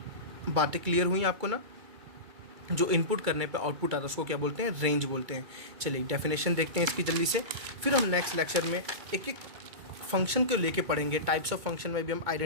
बातें क्लियर हुई आपको ना? जो इनपुट करने पे आउटपुट आता है उसको क्या बोलते हैं? रेंज बोलते हैं। चलिए डेफिनेशन देखते हैं इसकी जल्दी से, फिर हम नेक्स्ट लेक्चर में एक एक फंक्शन को लेके पढ़ेंगे। टाइप्स ऑफ फंक्शन में भी हम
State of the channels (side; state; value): left; late; 2.3 ms